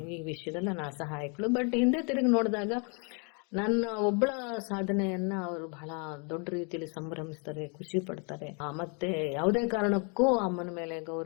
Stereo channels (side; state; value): right; quieter; 35.9 dB